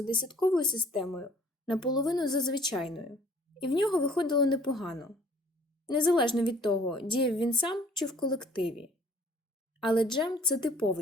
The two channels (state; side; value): normal; both; correlation 0.55